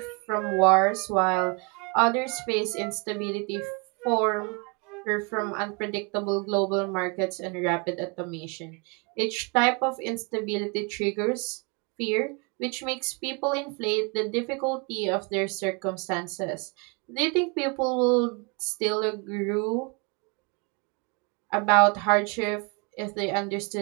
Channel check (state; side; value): quieter; left; 32.1 dB